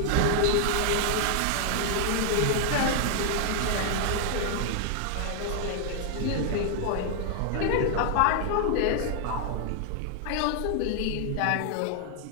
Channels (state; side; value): different; both; correlation 0.00